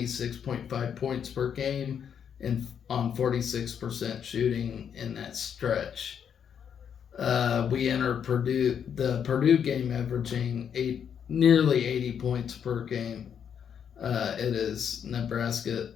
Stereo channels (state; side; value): quieter; right; 8.0 dB